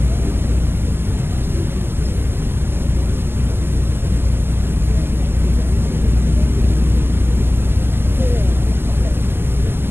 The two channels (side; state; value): left; late; 0.11 ms